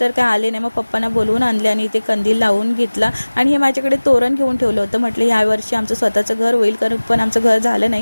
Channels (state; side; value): inverted; both; correlation -1.00